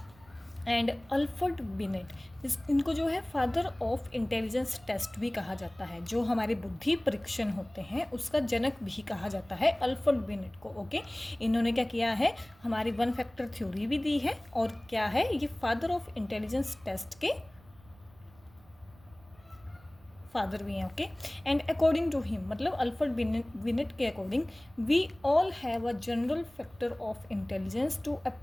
एंड अल्फ्रेड बिनेट इनको जो है फादर ऑफ इंटेलिजेंस टेस्ट भी कहा जाता है। जो हमारे बुद्धि परीक्षण होते हैं उसका जनक भी कहा जाता है अल्फ्रेड बिनेट को। ओके, इन्होंने क्या किया है? हमारी वन फैक्टर थ्योरी भी दी है, और क्या है ये? फादर ऑफ इंटेलिजेंस टेस्ट के फादर भी हैं। Okay, and according to him, मतलब अल्फ्रेड बिनेट के according, we all have a general factor of intelligence to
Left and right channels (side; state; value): right; noise; rumble, 26 dB below the sound